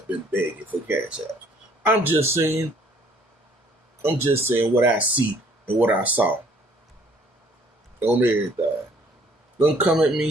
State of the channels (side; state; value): both; normal; correlation 0.60